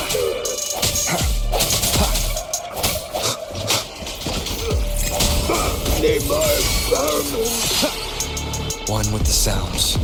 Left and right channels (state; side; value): identical; both; correlation 1.00